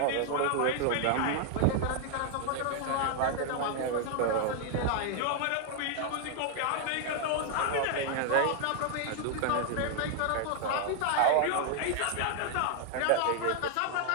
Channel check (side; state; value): both; different; correlation 0.00